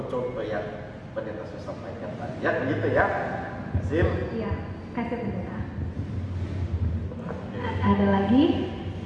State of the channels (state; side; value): identical; both; correlation 1.00